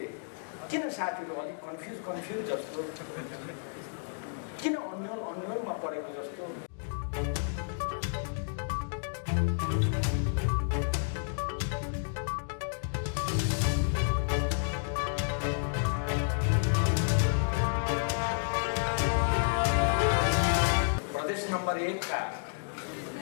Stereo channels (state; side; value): silent; right; digital silence